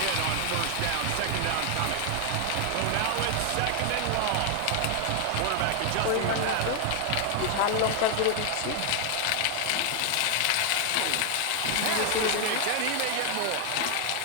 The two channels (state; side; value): different; both; correlation 0.00